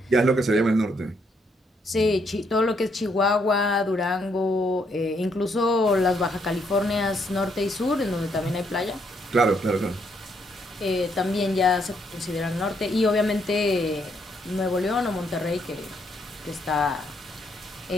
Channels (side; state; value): both; normal; correlation 0.73